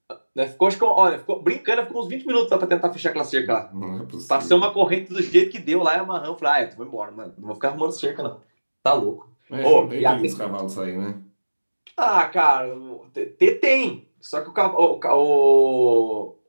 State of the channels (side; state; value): both; inverted; correlation -1.00